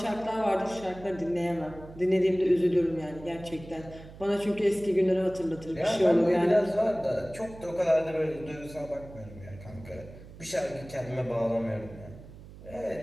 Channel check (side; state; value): right; noise; hum, 17 dB below the sound